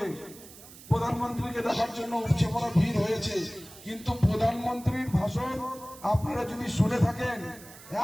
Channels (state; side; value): noise; right; hiss, 19 dB below the sound